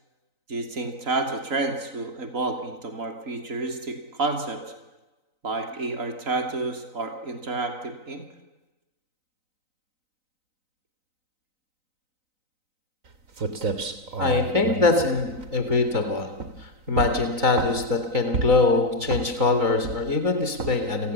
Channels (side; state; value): left; late; 3.9 ms